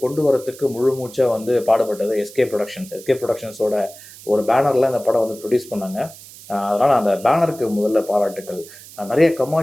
கொண்டு வரத்துக்கு முழு மூச்சாக வந்து பாடுபட்டது எஸ்கே ப்ரொடக்ஷன்ஸோட ஒரு பேனரில் இந்த படம் வந்து ப்ரொடியூஸ் பண்ணாங்க. அதனால் அந்த பேனருக்கு முதல்ல பாராட்டுக்கள். நிறைய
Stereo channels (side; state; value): right; noise; hiss, 18 dB below the sound